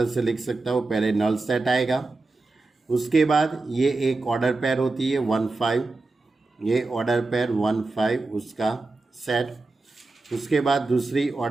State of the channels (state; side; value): quieter; left; 3.4 dB